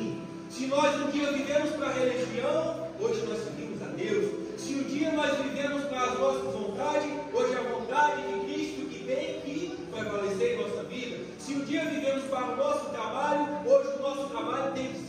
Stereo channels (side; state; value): both; identical; correlation 1.00